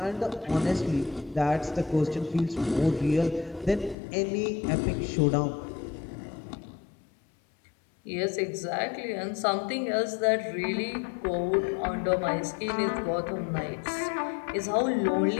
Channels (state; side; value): drops out; right; at 4.0 s